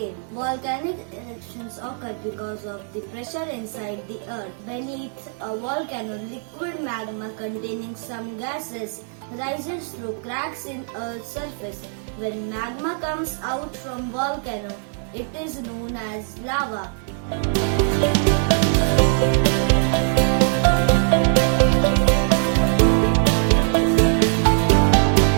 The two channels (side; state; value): left; silent; 58 dB below the other